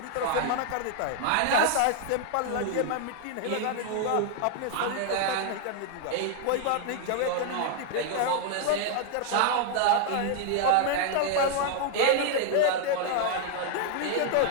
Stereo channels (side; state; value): both; different; correlation 0.00